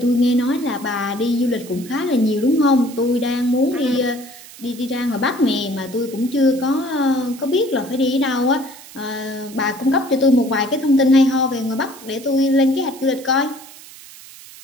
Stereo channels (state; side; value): noise; right; hiss, 18 dB below the sound